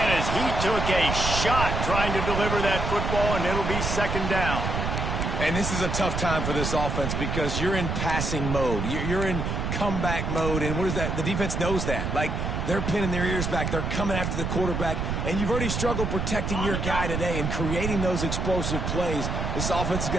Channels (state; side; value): noise; right; rumble, 1 dB below the sound